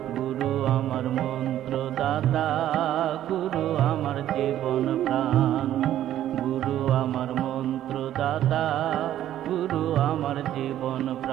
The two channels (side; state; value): left; quieter; 12.1 dB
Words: গুরু আমার মন্ত্র দাতা, গুরু আমার জীবন প্রাণ। গুরু আমার মন্ত্র দাতা, গুরু আমার জীবন